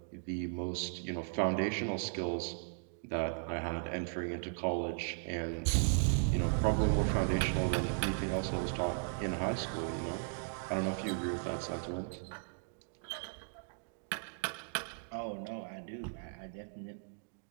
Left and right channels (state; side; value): silent; left; digital silence